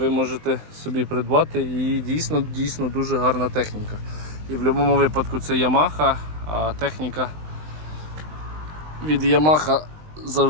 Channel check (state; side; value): late; left; 20 ms